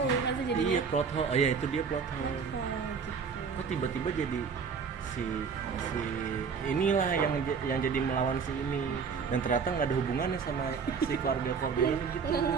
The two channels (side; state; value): left; quieter; 5.9 dB